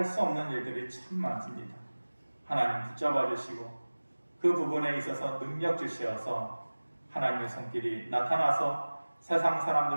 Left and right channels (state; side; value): inverted; both; correlation -1.00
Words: 수 없는 일들이 참 많습니다. 하나님 붙잡아 주시고 그 부분에 있어서 능력 주시어서 하나님의 손길이 나타나서 세상